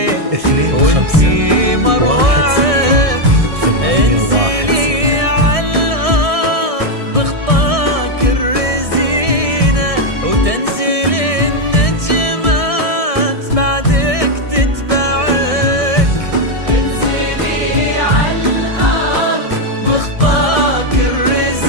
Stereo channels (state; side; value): late; left; 1.6 ms